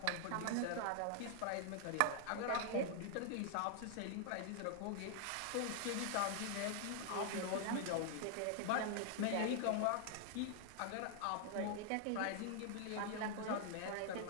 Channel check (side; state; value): both; different; correlation 0.00